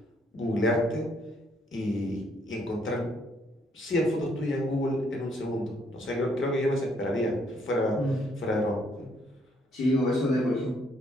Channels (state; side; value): normal; both; correlation 0.69